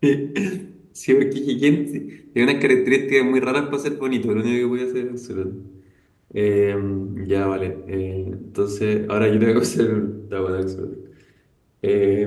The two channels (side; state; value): both; identical; correlation 1.00